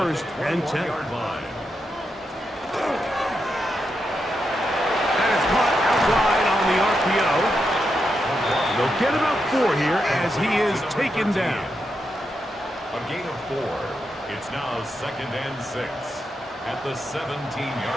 and 10. That is caught out wide on the RPO. They'll get about 4 here as he is taken down. A gain of 4. It's now 2nd and 6 at the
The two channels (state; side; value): normal; both; correlation 0.85